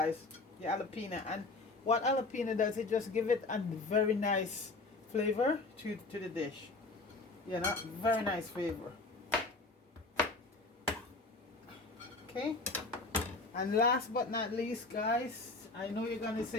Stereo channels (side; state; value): right; quieter; 3.4 dB